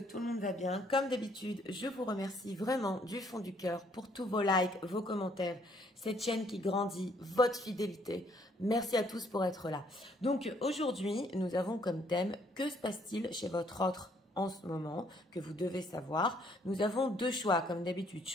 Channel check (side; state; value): both; normal; correlation 0.66